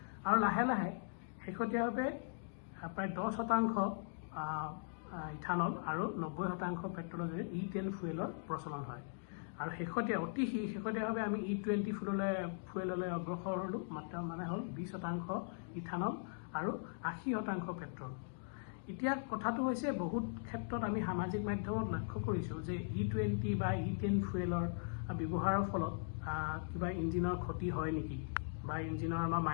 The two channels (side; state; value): right; silent; digital silence